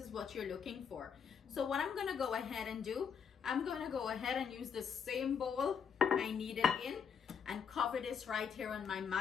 what you're looking for. So what I'm gonna go ahead and do, I'm gonna go ahead and use the same bowl I kneaded in and cover this right here on my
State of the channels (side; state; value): right; quieter; 7.0 dB